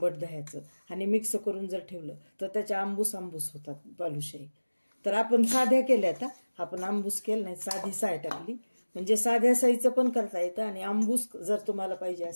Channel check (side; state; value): both; inverted; correlation -1.00